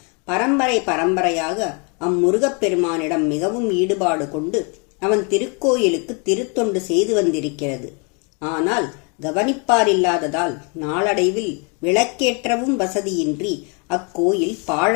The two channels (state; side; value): quieter; right; 34.9 dB